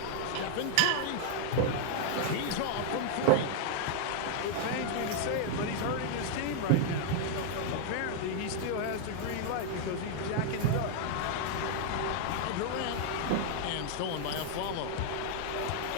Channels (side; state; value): both; different; correlation 0.00